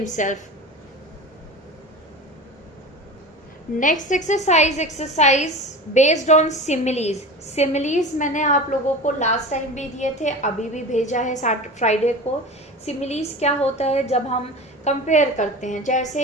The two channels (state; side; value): normal; both; correlation 0.32